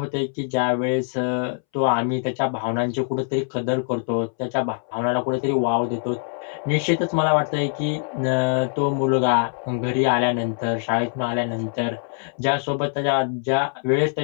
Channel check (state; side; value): silent; right; 63 dB below the other